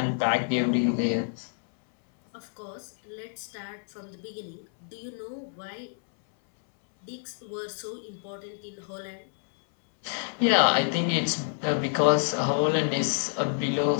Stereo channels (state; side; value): silent; right; 59 dB below the other